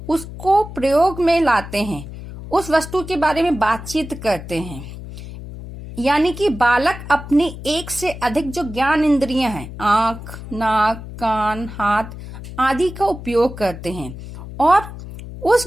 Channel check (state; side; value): noise; left; hum, 12 dB below the sound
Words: उसको प्रयोग में लाते हैं, उस वस्तु के बारे में बातचीत करते हैं। यानी कि बालक अपनी एक से अधिक जो ज्ञान इंद्रियां हैं, आंख, नाक, कान, हाथ आदि का उपयोग करते हैं और